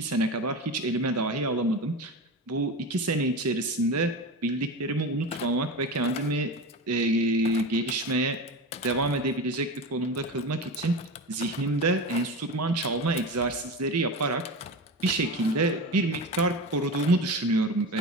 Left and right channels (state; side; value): normal; both; correlation 0.25